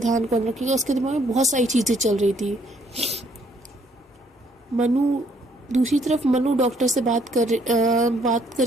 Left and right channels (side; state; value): both; normal; correlation 0.66